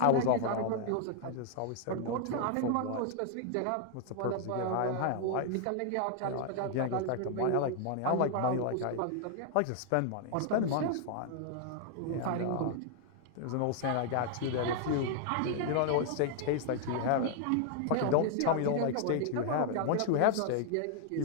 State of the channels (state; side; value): different; both; correlation 0.00